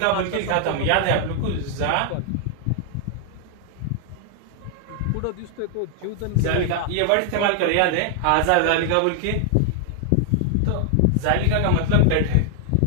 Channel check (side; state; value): both; different; correlation 0.00